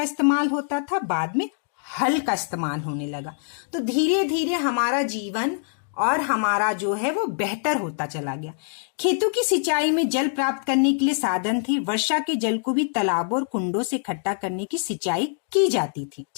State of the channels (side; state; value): right; silent; digital silence